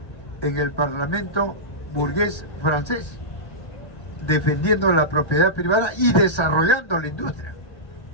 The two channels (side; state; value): right; late; 1.3 ms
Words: en el Parlamento burgués francés, defendiendo la propiedad privada y desarrollando la industria.